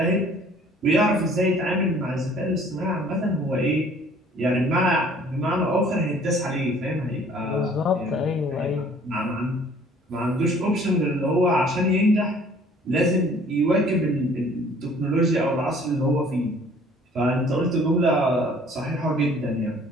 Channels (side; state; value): both; normal; correlation 0.55